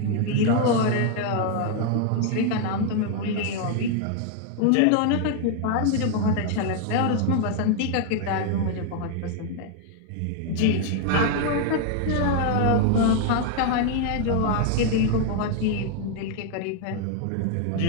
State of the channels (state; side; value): different; both; correlation 0.00